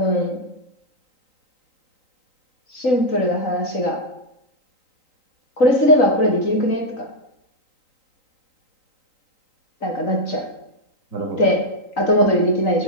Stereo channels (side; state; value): right; late; 3.9 ms